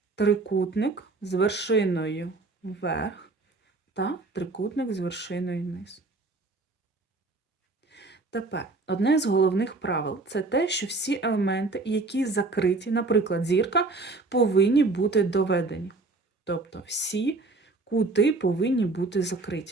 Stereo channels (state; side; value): quieter; left; 3.5 dB